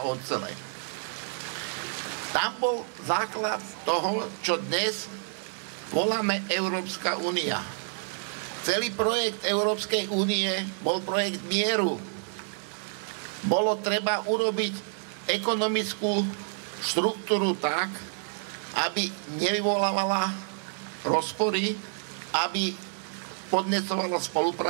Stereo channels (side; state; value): left; silent; 59 dB below the other